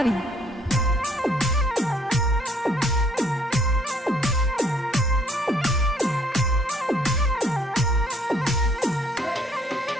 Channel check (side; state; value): both; normal; correlation 0.63